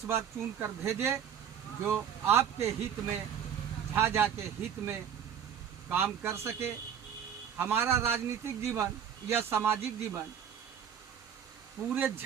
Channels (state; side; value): quieter; left; 8.4 dB